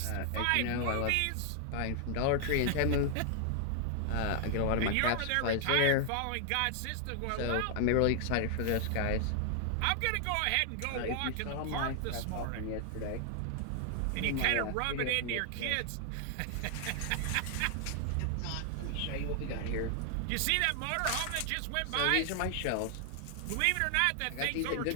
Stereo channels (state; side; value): different; both; correlation 0.00